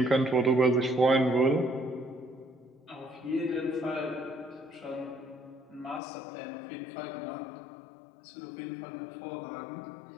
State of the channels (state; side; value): drops out; right; at 6.0 s